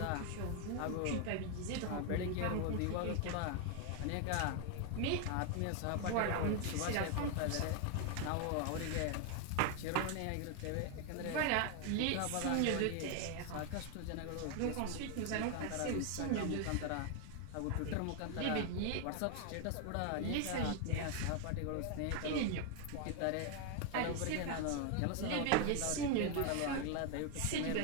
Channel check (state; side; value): different; both; correlation 0.01